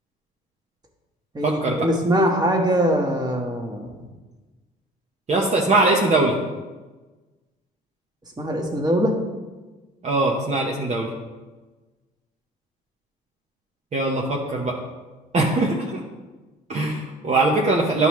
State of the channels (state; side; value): normal; both; correlation 0.45